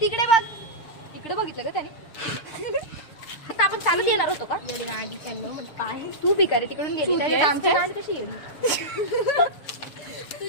इकडे बघितलं का त्याने. आता आपण चालत येणार होतो का? तू भिकारी तिकडून गेली. आमची गांड कशी गेली?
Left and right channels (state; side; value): late; right; 6.6 ms